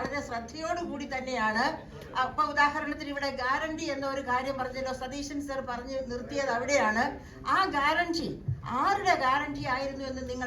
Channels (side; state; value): both; identical; correlation 1.00